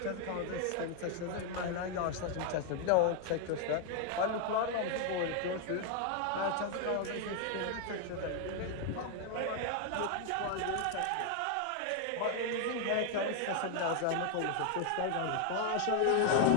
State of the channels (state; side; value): different; both; correlation 0.00